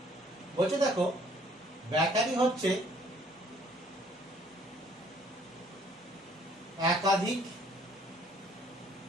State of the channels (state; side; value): normal; both; correlation 0.61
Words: বলছে? দেখো, ব্যাটারি হচ্ছে একাধিক